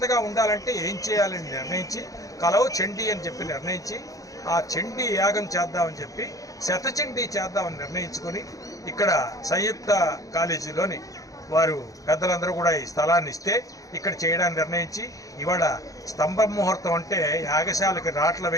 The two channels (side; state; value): right; late; 0.17 ms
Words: ఉండాలంటే ఏం చేయాలని నిర్ణయించి కలవు చండీ అని చెప్పి నిర్ణయించి ఆ చండీ యాగం చేద్దామని చెప్పి శతచండీ చేద్దామని నిర్ణయించుకొని ఇక్కడ సంయుక్త కాలేజీలోని వారు పెద్దలందరూ కూడా ఈ స్థలాన్ని ఇస్తే ఇక్కడ చేయడానికి నిర్ణయించి ఇవాళ స్తంభ ముహూర్తం అంటే యాగశాలకి రాట్ల